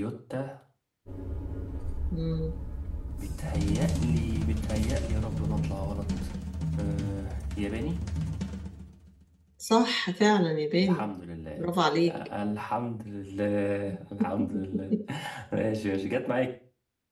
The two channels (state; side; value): identical; both; correlation 1.00